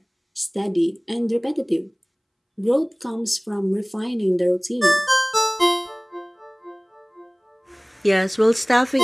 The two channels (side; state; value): both; identical; correlation 1.00